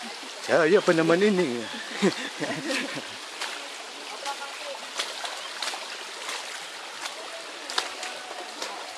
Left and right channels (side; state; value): both; identical; correlation 1.00